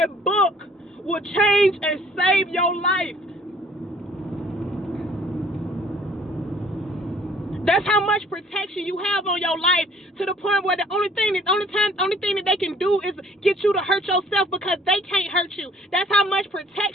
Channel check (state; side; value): normal; both; correlation 0.57